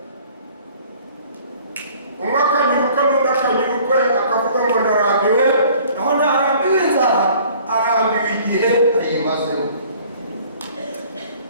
umwe akanyuruka n'undi akanyurukwe akavuga ngo ndarambiwe naho ntarambiwe inzara arambiwe igihe ayimazeho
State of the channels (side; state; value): both; inverted; correlation -0.53